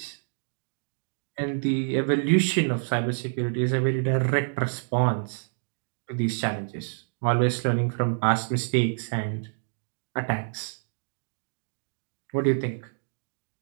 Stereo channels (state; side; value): silent; left; digital silence